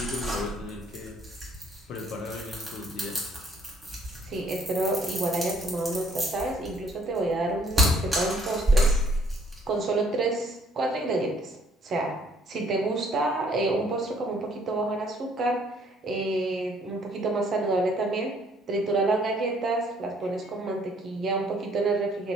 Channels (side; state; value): both; normal; correlation 0.63